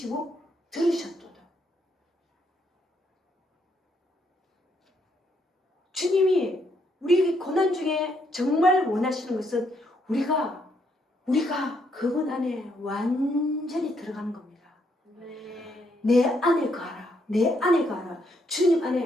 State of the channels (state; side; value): normal; both; correlation 0.74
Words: 들으셨도다. 주님이 우리 고난 중에 정말 원하시는 것은 우리가 그분 안에 완전히 들어가는 겁니다. 아멘. 내 안에 가라. 내 안에 가라. 주님